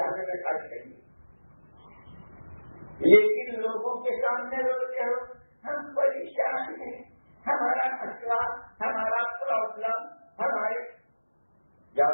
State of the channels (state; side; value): inverted; both; correlation -1.00